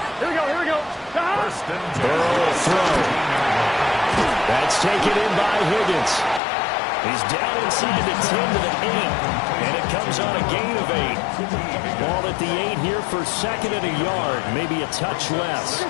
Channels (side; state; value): right; drops out; at 6.4 s